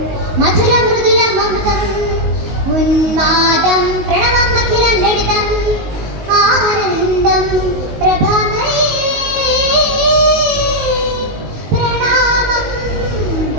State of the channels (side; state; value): left; late; 19 ms